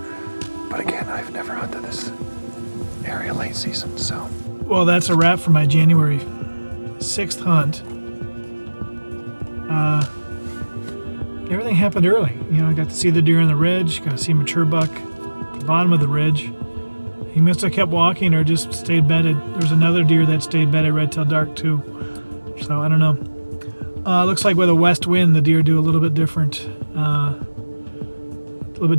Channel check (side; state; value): both; inverted; correlation -1.00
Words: But again, I've never hunted this area late season, so. Well, that's a wrap for my January 6th hunt. Everything happened early. I got to see the deer on the ridge, got to see mature buck at the bottom of the ridge. He must have kept walking or just stayed bedded. There's another deer that stayed bedded right till dark too. So I don't know. Looks like with a west wind, the deer do a little bit different